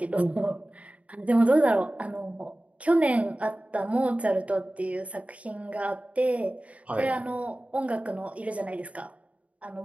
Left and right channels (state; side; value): late; left; 0.066 ms